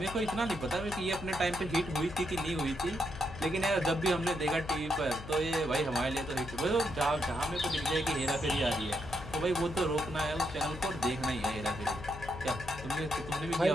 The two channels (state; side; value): noise; left; hum, 12 dB below the sound